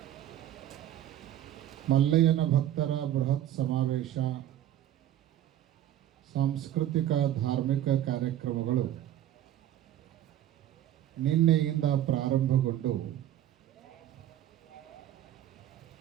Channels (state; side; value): quieter; left; 12.0 dB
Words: ಮಲ್ಲಯ್ಯನ ಭಕ್ತರ ಬೃಹತ್ ಸಮಾವೇಶ, ಸಾಂಸ್ಕೃತಿಕ ಧಾರ್ಮಿಕ ಕಾರ್ಯಕ್ರಮಗಳು ನಿನ್ನೆಯಿಂದ ಪ್ರಾರಂಭಗೊಂಡು